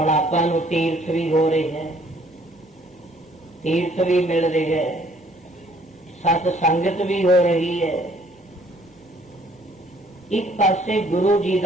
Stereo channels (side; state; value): both; normal; correlation 0.61